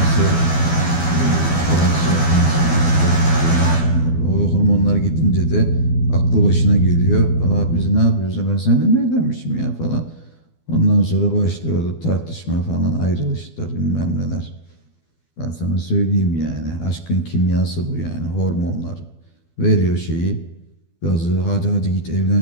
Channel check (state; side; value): late; right; 12 ms